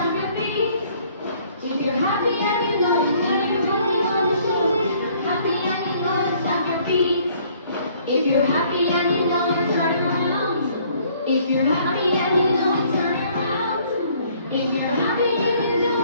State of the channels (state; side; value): inverted; both; correlation -0.61